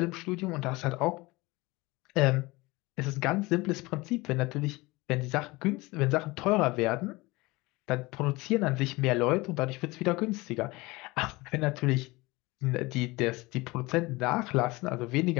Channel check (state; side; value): quieter; right; 22.5 dB